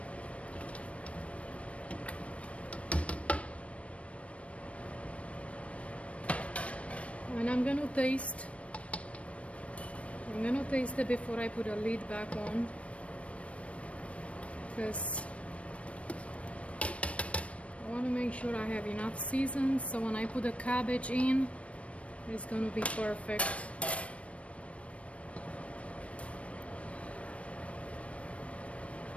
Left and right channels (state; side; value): late; right; 0.063 ms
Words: And I'm gonna taste it before I put the lid back on, because I want to make sure I have enough season, so when I put the cabbage in, it's gonna be perfect.